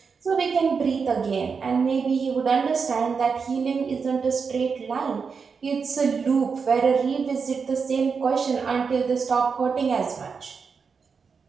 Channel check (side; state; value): left; quieter; 5.5 dB